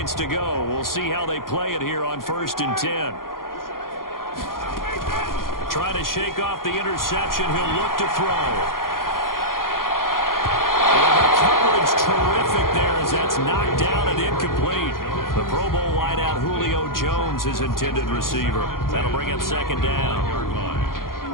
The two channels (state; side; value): late; right; 0.91 ms